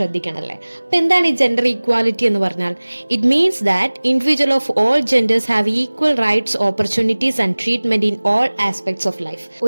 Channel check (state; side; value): inverted; both; correlation -1.00